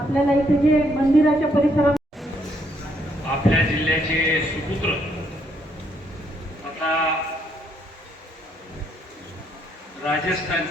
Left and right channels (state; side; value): normal; both; correlation 0.72